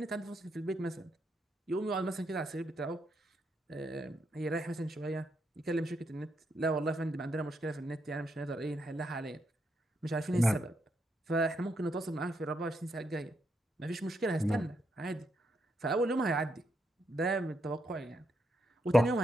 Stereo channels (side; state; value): both; normal; correlation 0.80